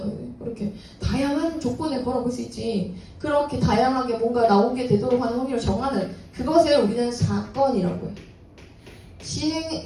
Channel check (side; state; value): both; identical; correlation 1.00